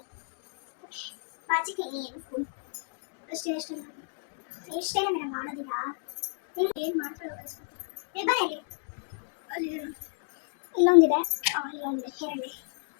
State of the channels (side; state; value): right; silent; digital silence